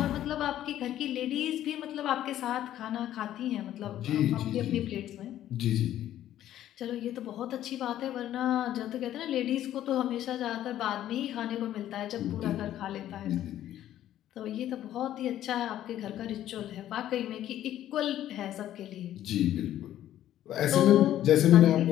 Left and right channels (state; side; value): quieter; right; 12.3 dB